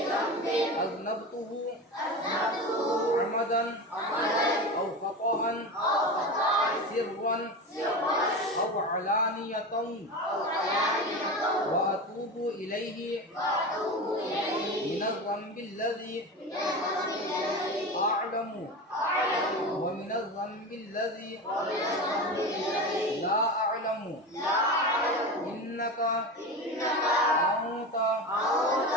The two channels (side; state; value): both; normal; correlation 0.25